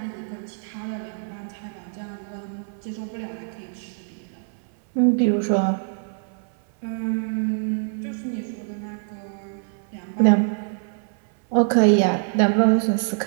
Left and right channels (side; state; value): left; silent; 62 dB below the other